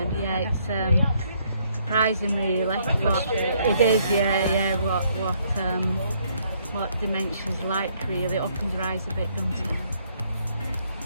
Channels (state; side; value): inverted; both; correlation -0.69